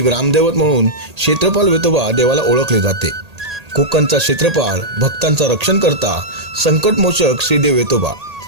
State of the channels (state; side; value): late; left; 1.8 ms